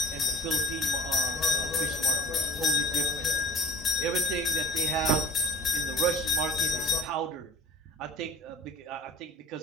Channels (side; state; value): both; normal; correlation 0.40